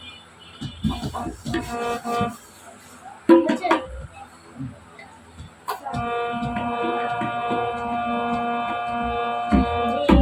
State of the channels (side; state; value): both; identical; correlation 1.00